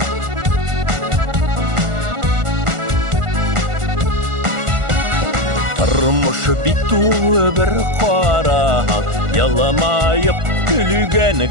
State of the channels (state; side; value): late; left; 1.4 ms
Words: Тормыш бит тулы бер кара, яламайып күлгән